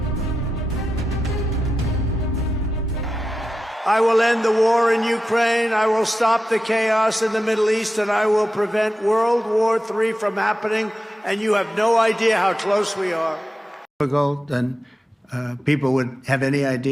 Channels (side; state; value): both; normal; correlation 0.91